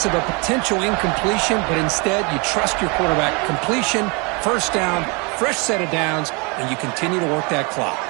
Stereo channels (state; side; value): quieter; left; 30.6 dB